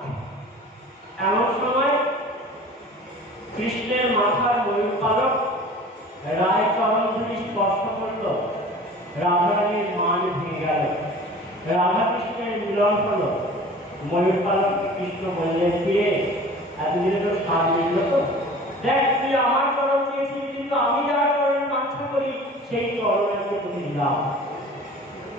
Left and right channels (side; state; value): both; normal; correlation 0.43